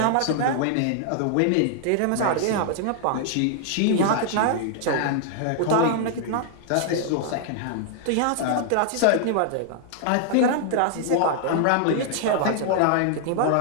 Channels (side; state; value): both; different; correlation 0.00